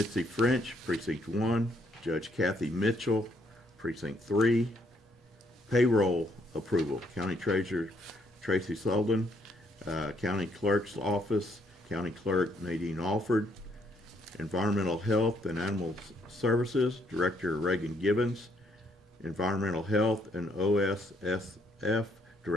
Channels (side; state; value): both; normal; correlation 0.71